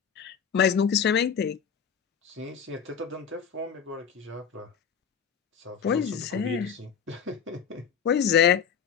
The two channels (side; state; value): right; quieter; 7.4 dB